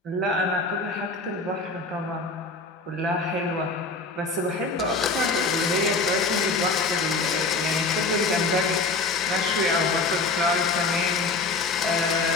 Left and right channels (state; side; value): quieter; right; 3.7 dB